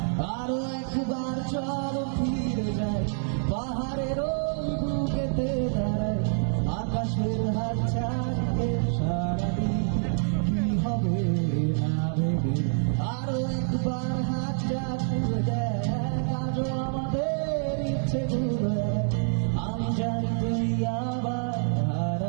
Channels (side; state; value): left; silent; 60 dB below the other